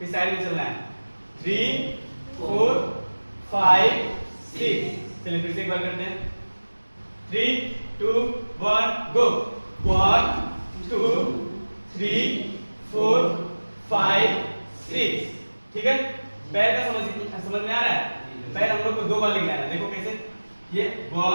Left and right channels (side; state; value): both; inverted; correlation -1.00